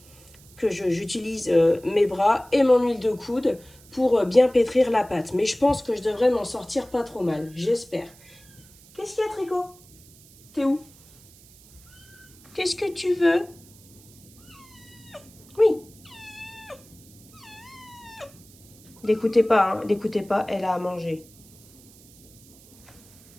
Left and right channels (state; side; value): noise; right; hiss, 24 dB below the sound